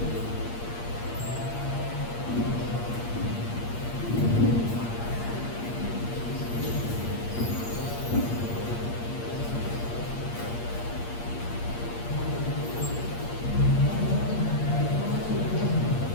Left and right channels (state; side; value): late; right; 8.5 ms